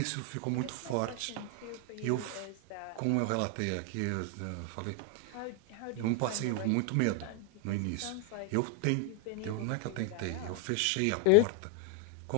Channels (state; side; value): different; both; correlation 0.01